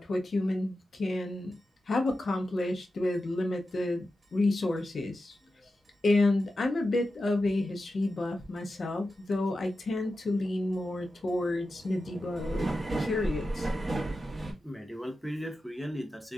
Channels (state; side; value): normal; both; correlation 0.91